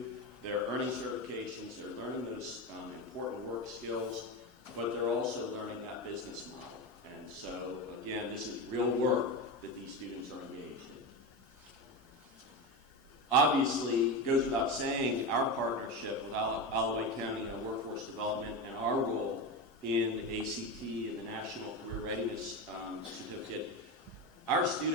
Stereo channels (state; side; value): normal; both; correlation 0.19